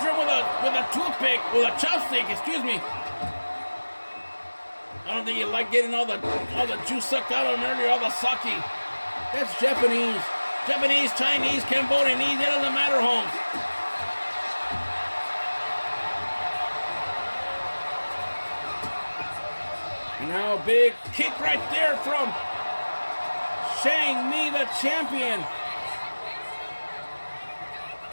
him with a toothpick, with a chopstick, excuse me. I don't think you like getting all the juice sucked out of him earlier, all the sake. That's Japanese. Japanese, Chinese, Cambodian, it doesn't matter, Holmes. Now a big kick right there from Shang Mi, the champion.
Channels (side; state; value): both; inverted; correlation -1.00